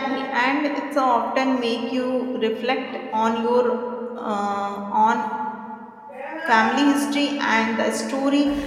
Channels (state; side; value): identical; both; correlation 1.00